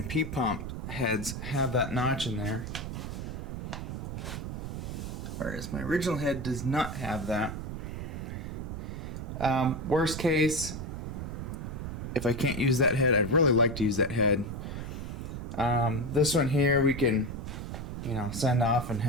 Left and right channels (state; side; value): noise; right; rumble, 6 dB below the sound